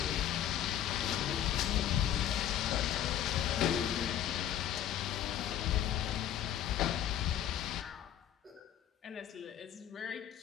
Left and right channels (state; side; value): quieter; right; 10.7 dB